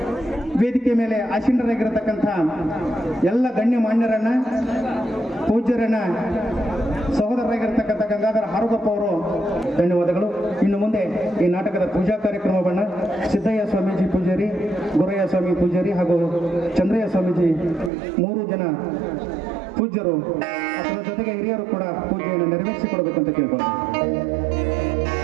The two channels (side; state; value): left; drops out; at 17.9 s